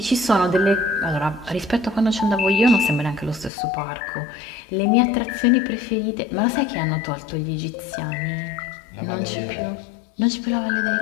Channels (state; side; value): drops out; right; at 3.5 s